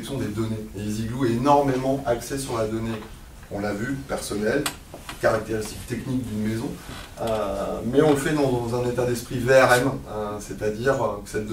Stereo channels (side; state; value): both; identical; correlation 1.00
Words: des données. Et EasyGlue est énormément axé sur la donnée, on l'a vu, personnelle, caractéristiques techniques d'une maison, mais on le fait dans un état d'esprit VRM, c'est-à-dire que cette